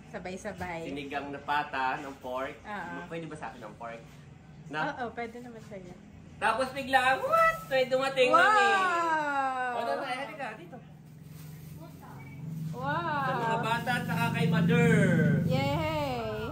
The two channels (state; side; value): identical; both; correlation 1.00